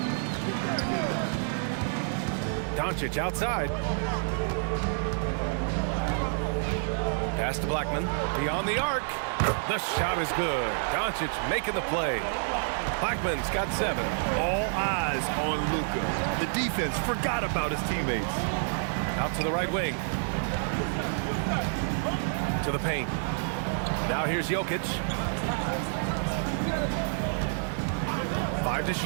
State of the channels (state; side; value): silent; left; digital silence